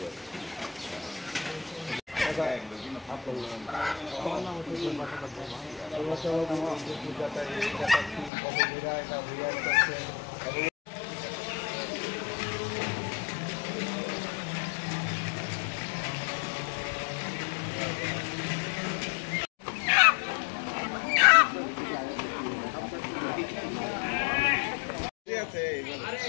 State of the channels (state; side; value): drops out; right; at 8.3 s